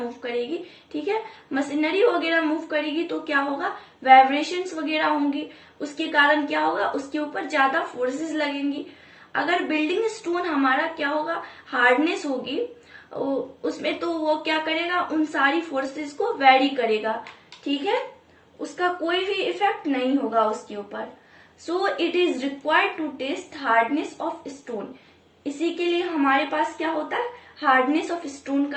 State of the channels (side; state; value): both; identical; correlation 1.00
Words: करेगी। ठीक है, मशीनरी वगैरह मूव करेगी तो क्या होगा, वाइब्रेशंस वगैरह होंगी, उसके कारण क्या होगा, उसके ऊपर ज्यादा फोर्सेस लगेंगी। अगर बिल्डिंग स्टोन हमारा क्या होगा, हार्डनेस होगी उसमें, तो वो क्या करेगा, उन सारी फोर्सेस को वेरी करेगा। ठीक है, उसका कोई भी इफेक्ट नहीं होगा उसके ऊपर। So it is required to test hardness of stone. इसी के लिए हमारे पास क्या होता है, हार्डनेस ऑफ स्टोन